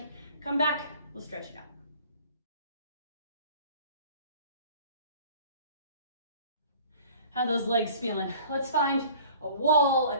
come back, we'll stretch it out. How are those legs feeling? Let's find a wall, a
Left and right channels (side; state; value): both; inverted; correlation -0.48